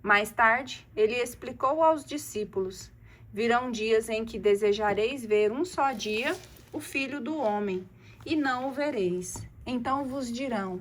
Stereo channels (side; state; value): both; identical; correlation 1.00